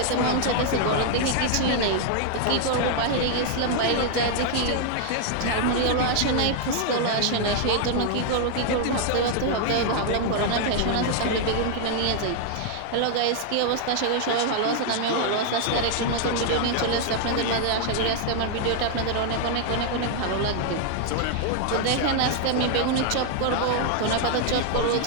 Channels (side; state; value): both; different; correlation 0.00